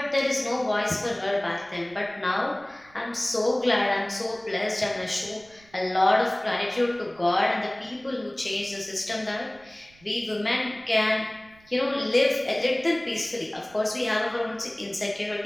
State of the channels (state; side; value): noise; right; rumble, 28 dB below the sound